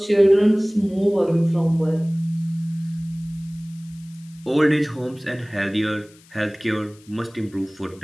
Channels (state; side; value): noise; left; hiss, 27 dB below the sound